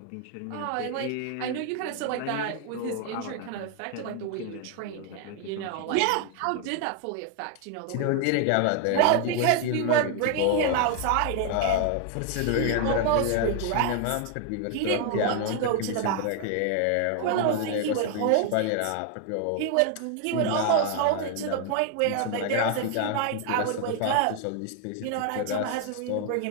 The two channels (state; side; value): different; both; correlation 0.00